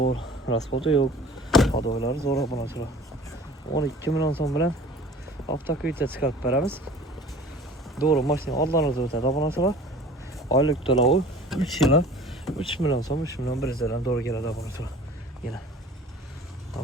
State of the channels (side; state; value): both; normal; correlation 0.45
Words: raspotu yo'q. Hadoylari zo'r obunachilar. 12 million so'm bilan avtokuyta chiqarib beramiz. Doğru mashina oldlarinizda o'tadi obunachilar. Oylik to'lovi 3 yil 3 million so'm, 3 million 100 dan doğru keladi obunachilar. Yana